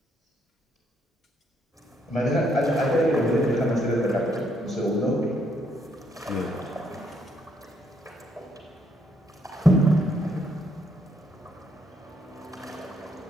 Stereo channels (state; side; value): normal; both; correlation 0.72